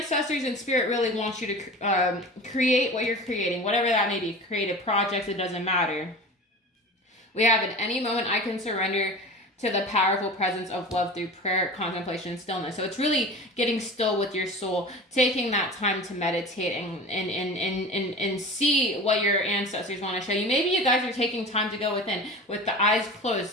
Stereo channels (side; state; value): both; normal; correlation 0.35